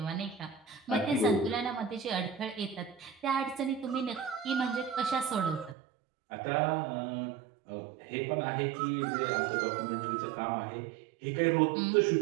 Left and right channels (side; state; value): left; drops out; at 5.8 s